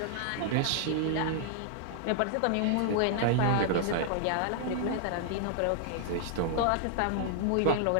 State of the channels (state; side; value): different; both; correlation -0.01